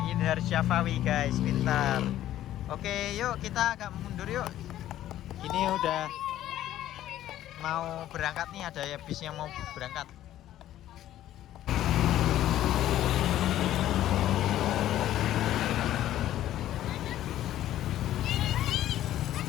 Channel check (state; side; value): quieter; right; 12.9 dB